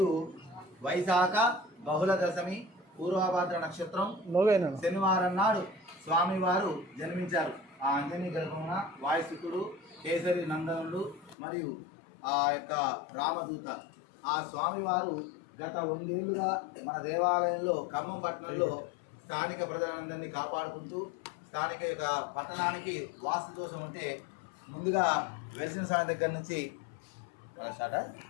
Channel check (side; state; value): right; drops out; at 11.4 s